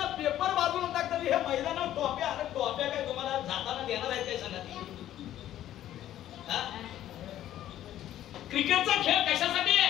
पेपर बाजूला टाकतात, हे मैदानावर टॉप्या. अरे टॉप्या काय तुम्हाला जाताना देणार आहेत काय सांगा? क्रिकेटचा खेळ कशासाठी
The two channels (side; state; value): right; quieter; 12.4 dB